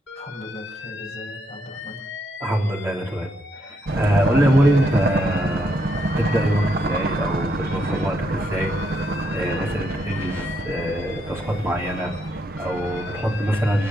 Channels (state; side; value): normal; both; correlation 0.77